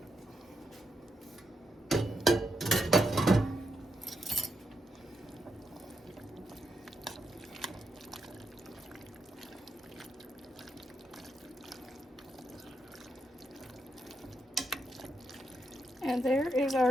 And there is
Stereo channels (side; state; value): both; normal; correlation 0.82